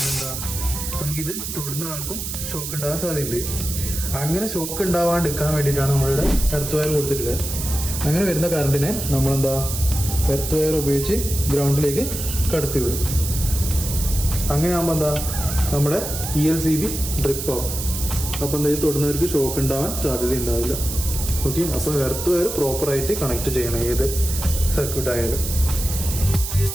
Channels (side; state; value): right; noise; hiss, 6 dB below the sound